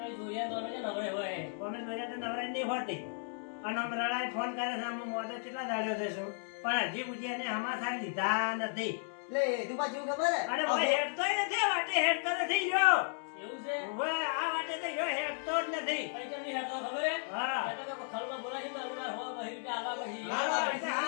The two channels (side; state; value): right; silent; 55 dB below the other